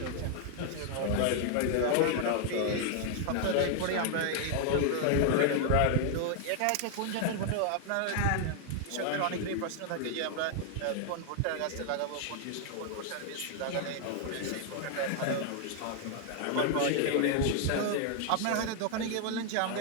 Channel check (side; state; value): both; different; correlation 0.00